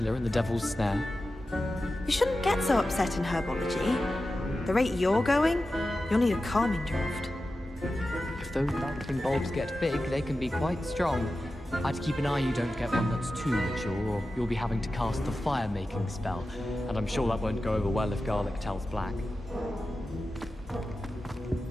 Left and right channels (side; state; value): both; normal; correlation 0.93